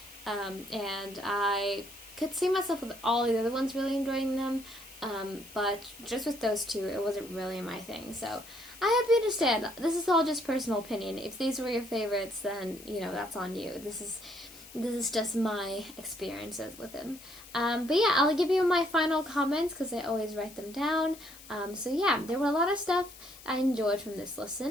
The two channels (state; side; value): noise; left; hiss, 18 dB below the sound